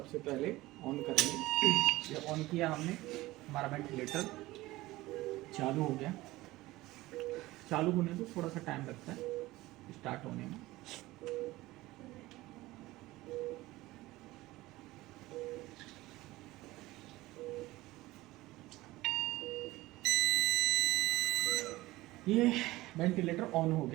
पहले ऑन करेंगे। ये ऑन किया हमने, हमारा वेंटिलेटर चालू हो गया। चालू होने में थोड़ा सा टाइम लगता है स्टार्ट होने में। ये वेंटिलेटर ऑन हो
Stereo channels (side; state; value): left; quieter; 18.5 dB